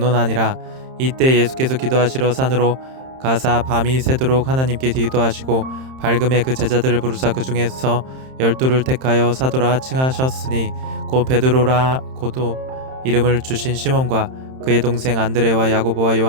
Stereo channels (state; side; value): late; left; 31 ms